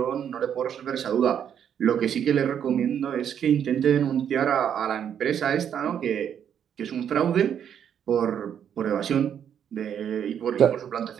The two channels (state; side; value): quieter; left; 8.8 dB